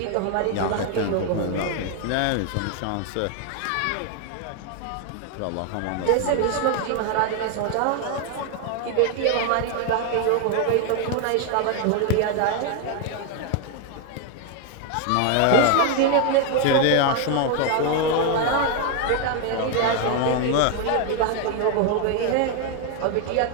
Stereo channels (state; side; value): different; both; correlation 0.01